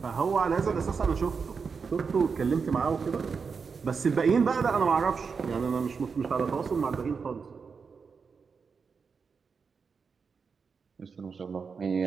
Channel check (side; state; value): left; quieter; 5.5 dB